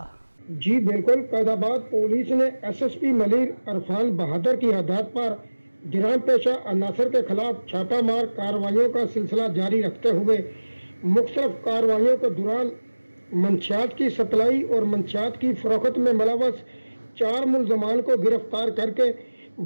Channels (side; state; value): both; inverted; correlation -1.00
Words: جی بالکل، قائد آباد پولیس نے S S P Malir Irfan Bahadur کی ہدایت پر جرائم پیشہ عناصر کے خلاف چھاپہ مار کارروائیوں کا سلسلہ جاری رکھتے ہوئے مختلف کارروائیوں کے دوران منشیات کی سپلائی اور منشیات کی فروخت میں ملوث 4 ملزمان کو گرفتار کر کے